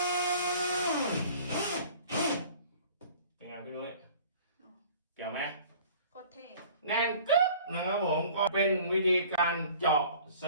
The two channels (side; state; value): both; inverted; correlation -0.48